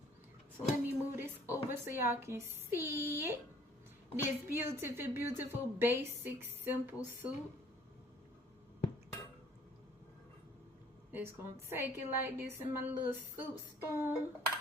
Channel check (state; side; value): normal; both; correlation 0.57